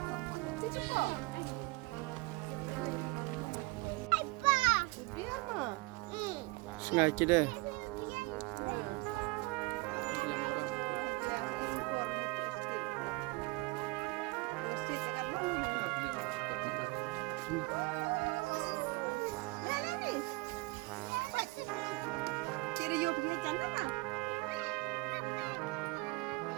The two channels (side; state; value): left; quieter; 24.9 dB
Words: Cici kok. Dia mah. Sengaja deh. Tira you punya channel lah.